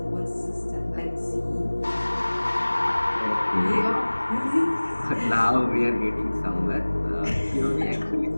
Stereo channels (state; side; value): inverted; both; correlation -1.00